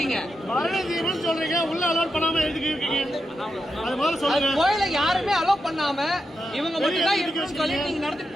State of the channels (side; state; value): both; normal; correlation 0.86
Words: சொல்றீங்க உள்ள அலோட் பண்ணாம எதுக்கு இருக்கீங்க? அது மாதிரி சொல்லுங்க. கோயில யாருமே அலோட் பண்ணாம இவங்க மட்டும் தான் இருக்கணும்னு சொல்லி நீங்க